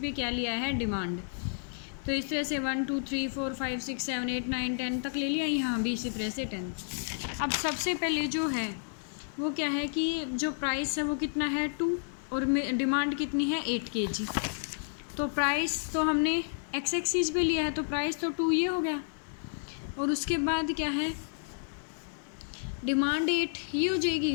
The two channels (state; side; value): silent; right; 57 dB below the other